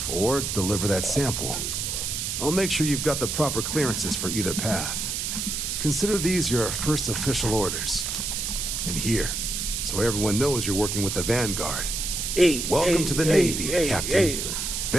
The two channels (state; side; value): noise; right; hiss, 2 dB below the sound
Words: or deliver that sample. I'll make sure you've got the proper clearances for either path. Consider these your first official orders. And here, so everyone knows you're working with the Vanguard. Welcome to the Navy, Captain.